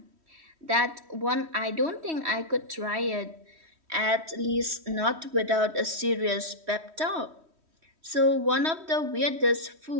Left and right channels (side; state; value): left; late; 3.1 ms